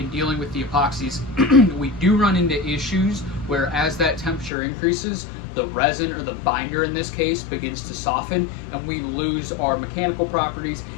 dealing with the epoxies, we do run into issues where as that temperature increases, the resin, or the binder in this case, begins to soften, and we lose our mechanical properties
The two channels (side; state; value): right; drops out; at 4.5 s